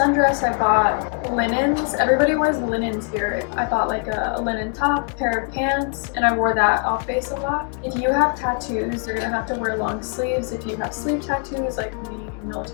I bought linens. Everybody wears linens here. I bought like a linen top, pair of pants, and I wore that off base a lot. If you have tattoos, you're going to have to wear long sleeves. If you have sleeve tattoos like we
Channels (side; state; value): right; quieter; 39.6 dB